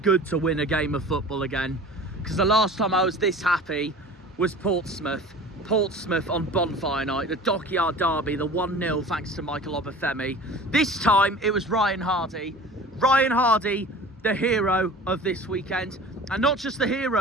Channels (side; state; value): both; normal; correlation 0.40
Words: to win a game of football again, because the last time I was this happy was Portsmouth on Bonfire Night, the Dockyard Derby, the 1-0 thanks to Michael Obafemi. This time it was Ryan Hardie, the hero of this weekend, and not just the